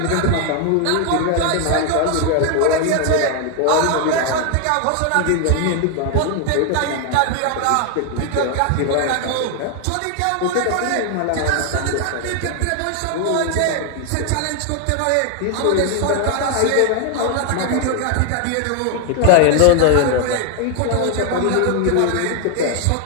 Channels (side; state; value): both; different; correlation 0.01